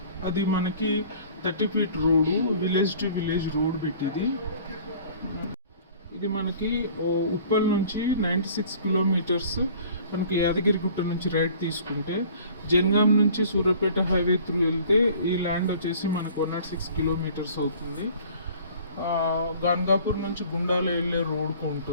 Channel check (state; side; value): inverted; both; correlation -0.49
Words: అది మనకి 30 feet road, village to village road పెట్టింది. ఇది మనకి ఉప్పల్ నుంచి 96 కిలోమీటర్స్. మనకి యాదగిరిగుట్ట నుంచి రైట్ తీసుకుంటే జనగాం నుంచి సూర్యాపేట హైవే త్రూ వెళ్తే ఈ ల్యాండ్ వచ్చేసి మనకు 106 కిలోమీటర్స్ అవుతుంది. గాన్గాపూర్ నుంచి గుండాల వెళ్ళే రోడ్కు